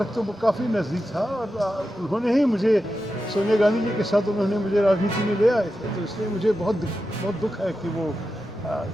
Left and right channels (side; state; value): both; normal; correlation 0.90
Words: तो काफ़ी नज़दीक था. और उन्होंने ही मुझे, सोनिया गांधी जी के साथ उन्होंने मुझे राजनीति में ले आए थे. तो इसलिए मुझे बहुत दुख है कि वो